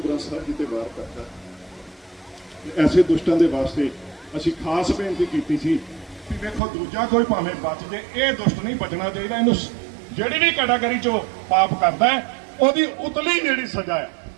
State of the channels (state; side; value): drops out; left; at 6.6 s